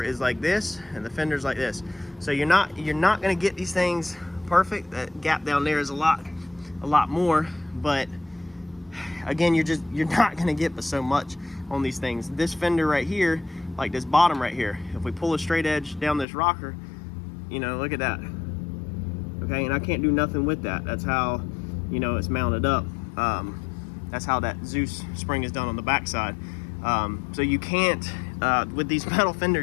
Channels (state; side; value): drops out; right; at 16.2 s